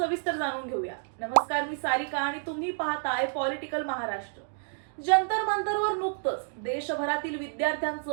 जाणून घेऊया। नमस्कार, मी सारिका आणि तुम्ही पाहताय पॉलिटिकल महाराष्ट्र। जंतर मंतरवर नुकतंच देशभरातील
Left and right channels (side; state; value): left; silent; 58 dB below the other